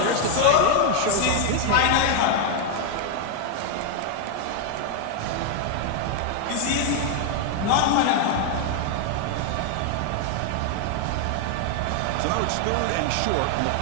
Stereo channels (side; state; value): both; different; correlation 0.00